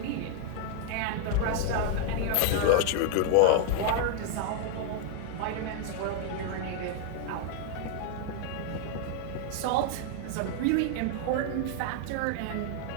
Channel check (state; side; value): different; both; correlation 0.00